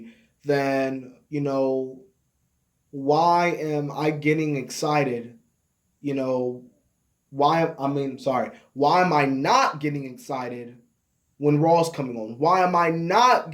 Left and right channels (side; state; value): both; identical; correlation 1.00